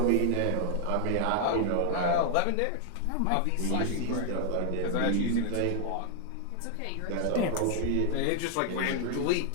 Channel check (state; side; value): different; both; correlation 0.00